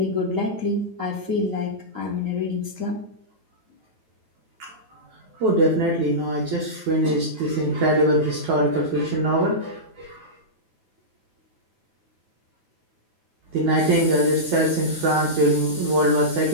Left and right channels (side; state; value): left; late; 9.3 ms